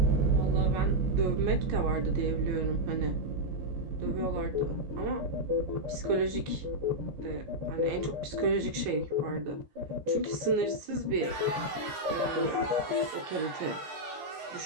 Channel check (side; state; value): left; late; 14 ms